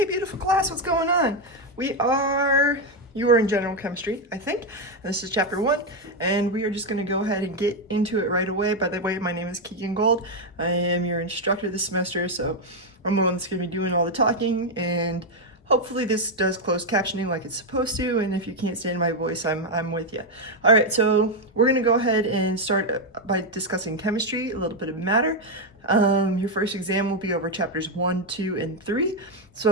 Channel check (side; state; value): both; normal; correlation 0.04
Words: Hey, beautiful class, what's going on? You are in general chemistry, I think. And this is chapter 1, and we are just going to go ahead and get into it right away. By the way, my name is Keegan Gold. I am your instructor this semester, so I'm the one that's going to be doing all the talking, and hopefully this does closed captioning like it's supposed to, and if you can't stand my voice, I'm with you. All right, so we're going to go ahead and start by discussing chemistry, a little bit of matter. Your first exam will be over chapters 1, 2, and 3.